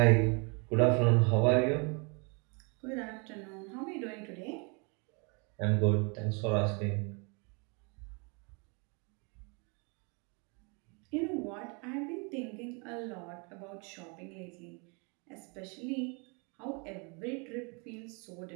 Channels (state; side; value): quieter; left; 33.4 dB